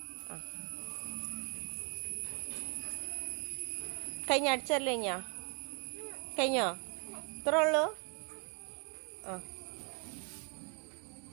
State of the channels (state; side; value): quieter; left; 35.6 dB